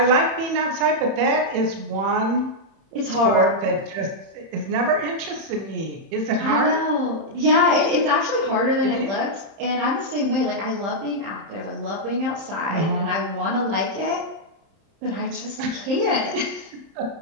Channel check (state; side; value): late; left; 31 ms